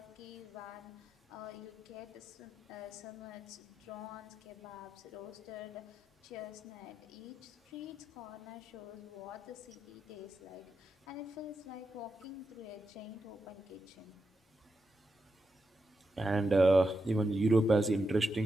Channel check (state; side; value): normal; both; correlation 0.86